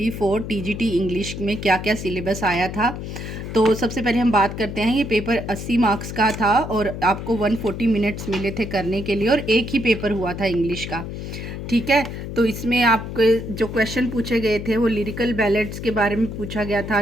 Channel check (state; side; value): noise; left; hum, 7 dB below the sound